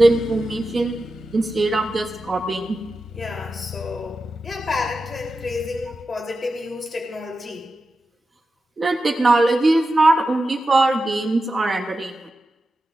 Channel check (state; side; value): normal; both; correlation 0.91